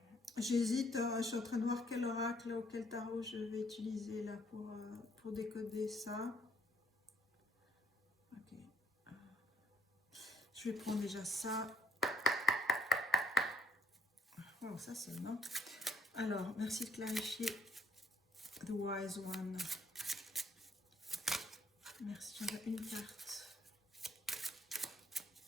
J'hésite, je suis en train de voir quel oracle ou quel tarot je vais utiliser là pour décoder ça. Ok. Je vais prendre déjà ça. Oh, ça c'est bon. Alors, merci de clarifier. The Wise One. Merci, j'en ai une carte.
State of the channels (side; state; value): both; normal; correlation 0.67